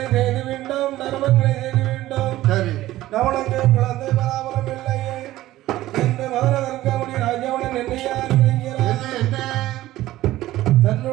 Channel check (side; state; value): left; quieter; 15.5 dB